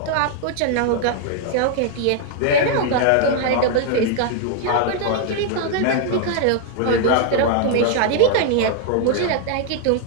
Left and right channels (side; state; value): both; different; correlation 0.00